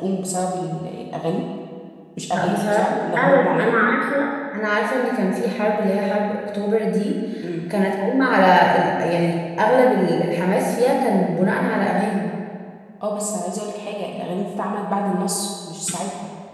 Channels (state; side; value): identical; both; correlation 1.00